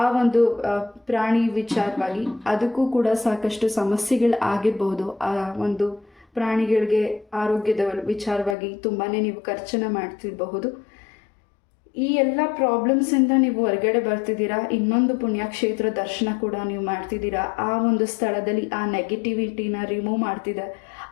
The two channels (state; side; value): drops out; right; at 8.6 s